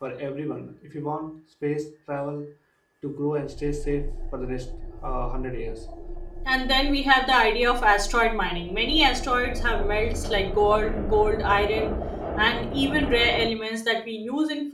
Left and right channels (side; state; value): both; identical; correlation 1.00